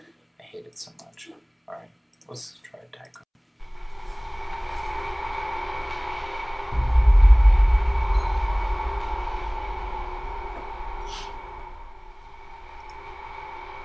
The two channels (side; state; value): both; identical; correlation 1.00